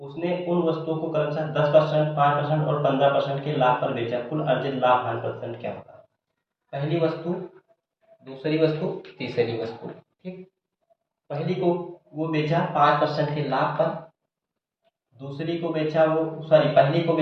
उन वस्तुओं को क्रमशः 10%, 5% और 15% के लाभ पर बेचा। कुल अर्जित लाभ हानि परसेंट क्या होगा। पहली वस्तु, दूसरी वस्तु, तीसरी वस्तु। ठीक, पहली को वो बेचा 5% के लाभ पर, दूसरी को बेचा वो सॉरी पहली को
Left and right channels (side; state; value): both; identical; correlation 1.00